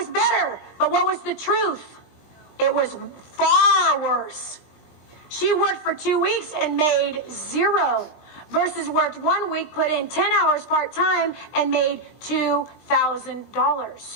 better. But what was the truth? It was far worse. She worked for 2 weeks and made zero. Versus worked 1 week, put in 10 hours part-time, and made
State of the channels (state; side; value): late; right; 20 ms